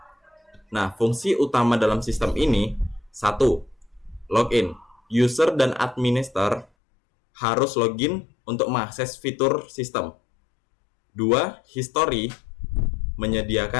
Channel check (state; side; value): drops out; right; at 6.7 s